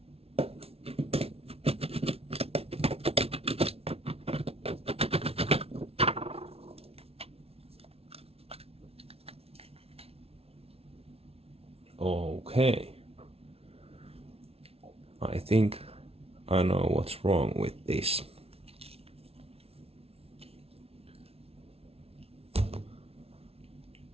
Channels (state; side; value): late; left; 0.29 ms